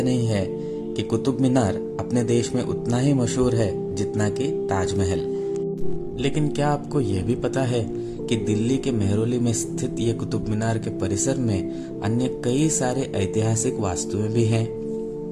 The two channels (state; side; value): identical; both; correlation 1.00